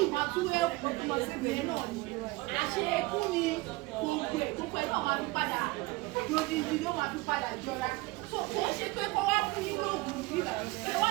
máa tún ẹ̀kú ọ̀sẹ̀ náà ni àṣekú ni gbogbo ẹ̀ náà máa fi padà lódìdí ló máa fi padà jọra so kò ń ṣe pé kọ́ wá fún yín lóògùn yìí ẹ wà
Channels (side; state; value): left; quieter; 22.3 dB